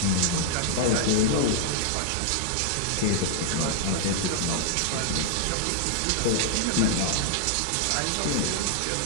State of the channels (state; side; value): different; both; correlation -0.01